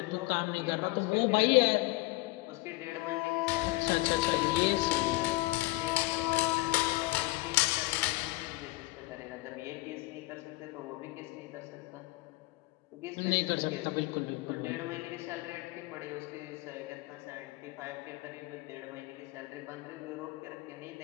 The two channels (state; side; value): quieter; right; 21.8 dB